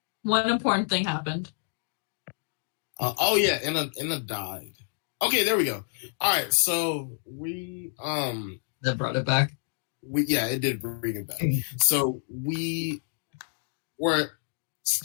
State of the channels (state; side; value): silent; right; digital silence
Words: One important thing happened. Oh yeah, Inna died. Okay, there we go. All right, so we That brought it back. it did bring it back. So we were